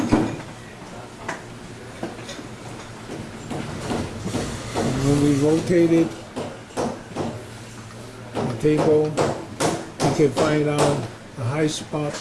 When we rotate it, the table, we can find out the high spot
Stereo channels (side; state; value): both; identical; correlation 1.00